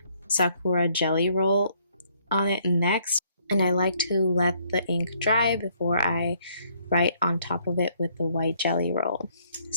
Sakura jelly roll on it next, and I like to let the ink dry before I write on top of it with the white jelly roll.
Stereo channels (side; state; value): both; inverted; correlation -0.67